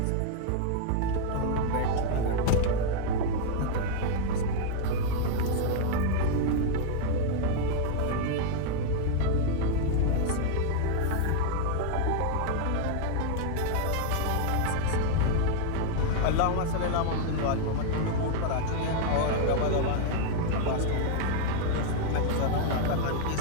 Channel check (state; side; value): different; both; correlation 0.00